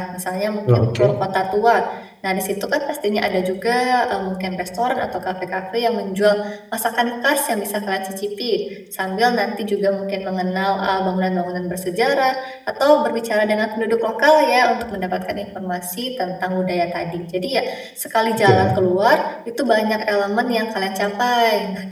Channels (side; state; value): both; identical; correlation 1.00